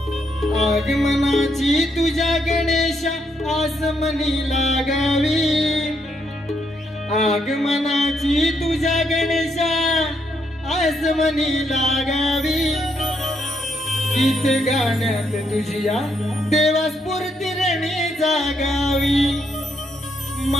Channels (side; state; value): both; normal; correlation 0.76